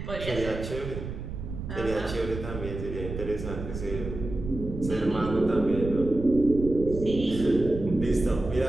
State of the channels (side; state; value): right; noise; rumble, 8 dB below the sound